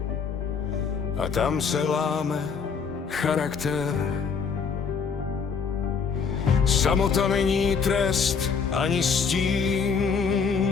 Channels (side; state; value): right; quieter; 5.9 dB